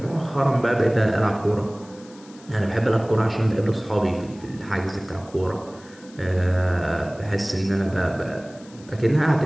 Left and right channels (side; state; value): left; noise; hiss, 24 dB below the sound